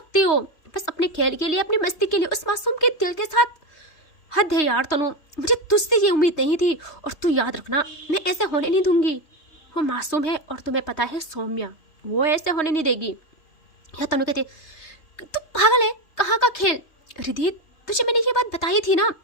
हो, बस अपने खेल के लिए, अपनी मस्ती के लिए, उस मासूम के दिल के साथ। हद है यार तनु, मुझे तुझसे ये उम्मीद नहीं थी, और तू याद रखना मैं ऐसे होने नहीं दूंगी। वो मासूम है और तुम्हें पता है सौम्या, वो ऐसे होने नहीं देगी। या तनु कहती तू पागल है, कहाँ का खेल। रिधि तुझे मैंने ये बात बताई थी ना,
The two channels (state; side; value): late; right; 3.2 ms